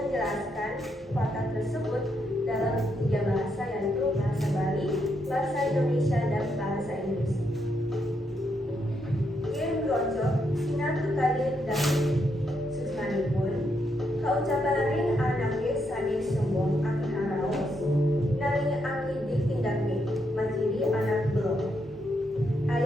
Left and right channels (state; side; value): normal; both; correlation 0.79